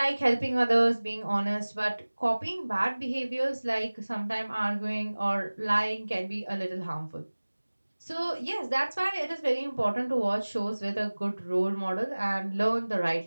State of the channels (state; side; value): inverted; both; correlation -1.00